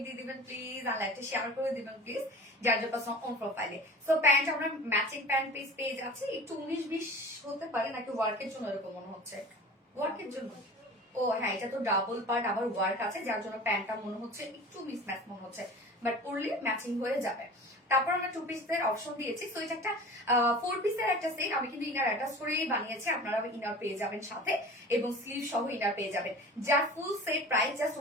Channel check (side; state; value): both; normal; correlation 0.38